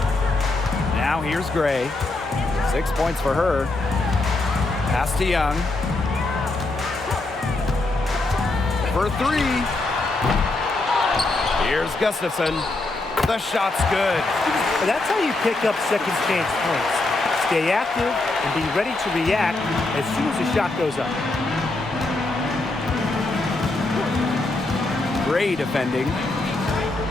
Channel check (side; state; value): right; quieter; 3.0 dB